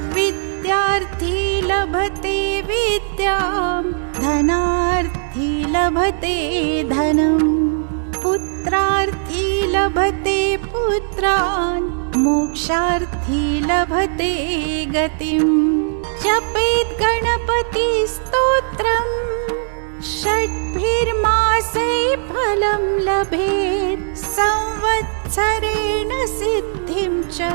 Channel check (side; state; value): left; silent; digital silence